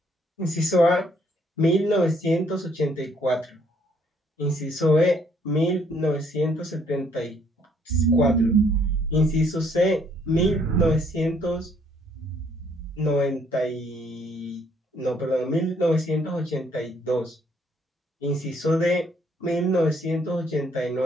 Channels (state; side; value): normal; both; correlation 0.66